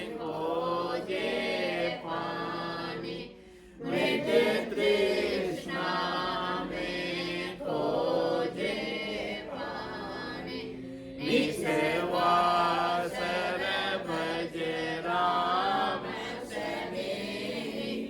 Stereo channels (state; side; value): identical; both; correlation 1.00